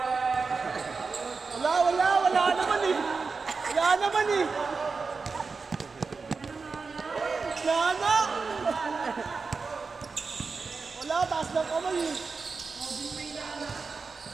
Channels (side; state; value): left; quieter; 4.6 dB